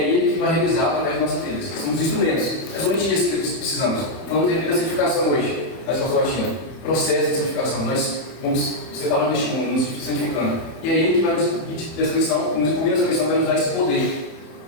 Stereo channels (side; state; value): right; late; 31 ms